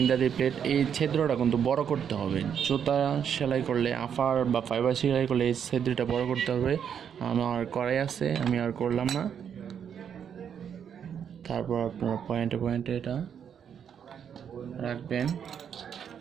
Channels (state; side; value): quieter; left; 8.1 dB